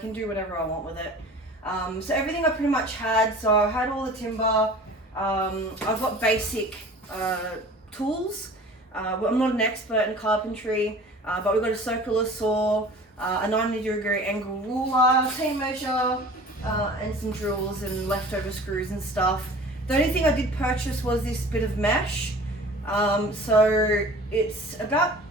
do whatever I want with it. So everything I pretty much had, so I had all the timber, I've got basic tools. I'm not an expert in carpentry, but we've got a circular saw, a 90-degree angle ruler, tape measure, and some drills and leftover screws and stuff. The only thing I did purchase was this bit of mesh. So it's about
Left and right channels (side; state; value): both; normal; correlation 0.43